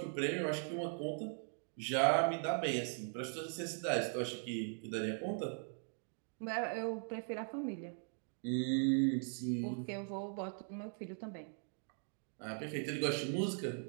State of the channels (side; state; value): left; silent; 51 dB below the other